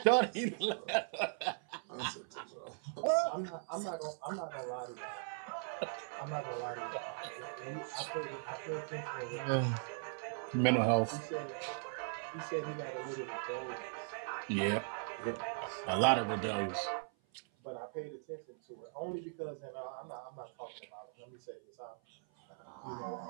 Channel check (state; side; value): silent; left; 52 dB below the other